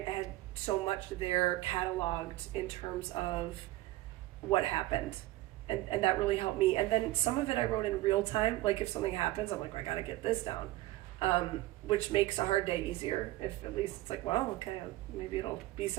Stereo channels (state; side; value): quieter; left; 17.5 dB